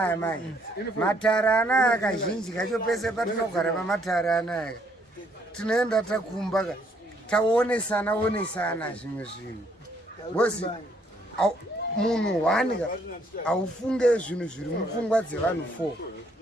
manje matara anaya kazhinji kacho pese patinogara pamatara anaya tinoenda takumba taonesana zvimwe zvinhu because munhu wanika aufunge zvinhu zviri mupfungwa dzevanhu 4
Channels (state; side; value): normal; both; correlation 0.68